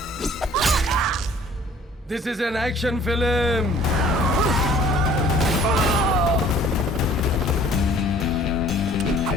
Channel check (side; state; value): both; normal; correlation 0.53